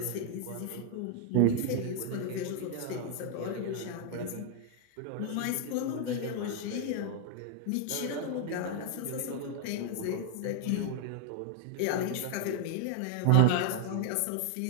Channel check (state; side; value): different; both; correlation 0.00